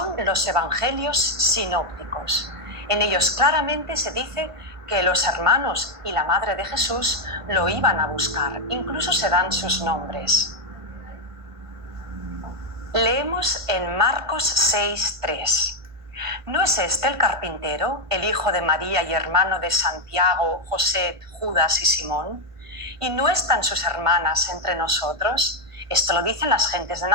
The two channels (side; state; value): left; late; 1.5 ms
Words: los evangelios sinópticos. En ellos claramente se dice que los hermanos y la madre de Jesús lo iban a buscar, incluso se dan sus nombres. Leemos en Marcos 6:3. ¿No es este el carpintero, el hijo de María y hermano de Santiago, José, Judas y Simón? ¿Y no están sus hermanas entre nosotros? Esto lo dicen las gentes de